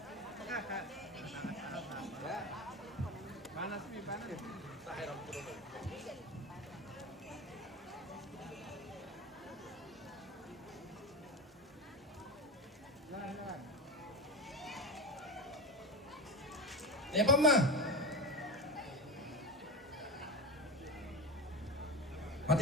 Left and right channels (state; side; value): normal; both; correlation 0.21